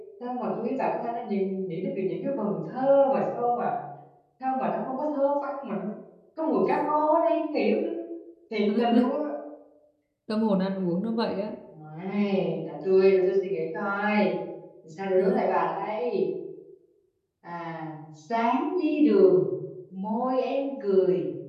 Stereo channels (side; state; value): both; identical; correlation 1.00